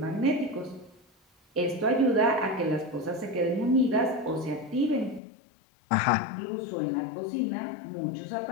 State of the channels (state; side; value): drops out; right; at 5.2 s